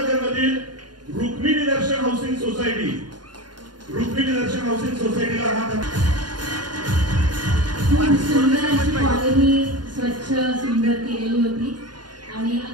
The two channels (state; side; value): late; left; 0.71 ms